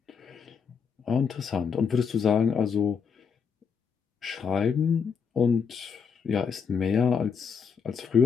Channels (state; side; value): quieter; right; 6.3 dB